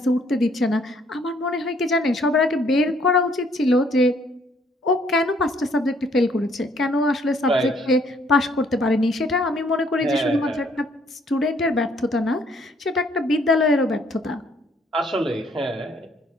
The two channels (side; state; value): both; normal; correlation 0.64